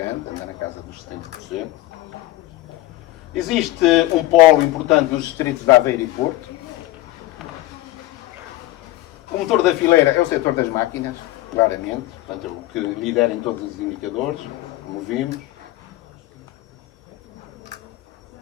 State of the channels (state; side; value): quieter; right; 16.7 dB